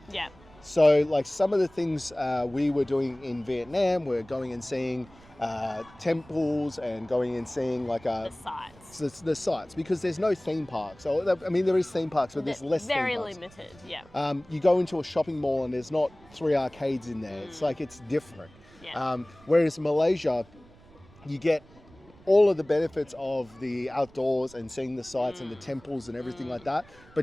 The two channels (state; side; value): noise; right; rumble, 25 dB below the sound